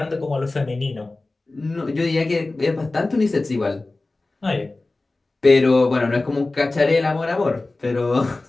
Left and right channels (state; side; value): quieter; right; 3.2 dB